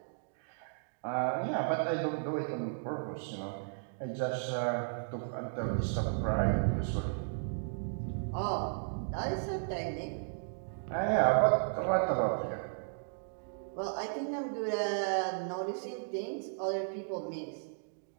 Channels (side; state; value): left; silent; digital silence